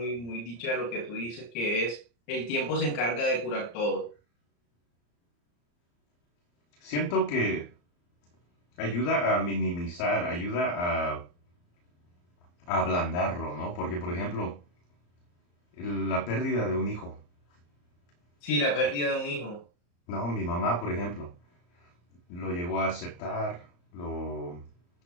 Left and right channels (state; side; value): late; right; 34 ms